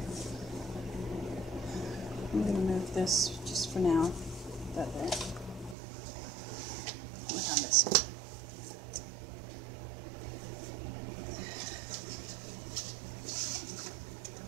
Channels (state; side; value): drops out; left; at 5.8 s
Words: I'm going to move this just for now. That there. Look on this one.